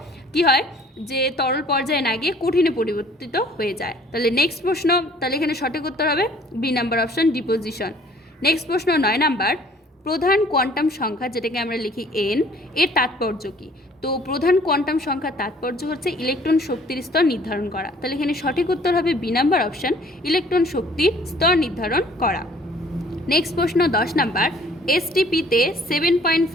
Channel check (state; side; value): normal; both; correlation 0.55